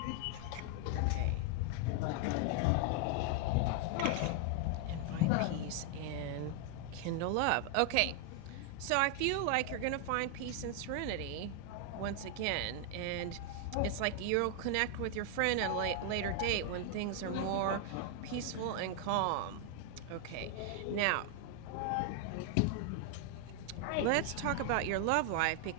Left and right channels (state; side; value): different; both; correlation 0.00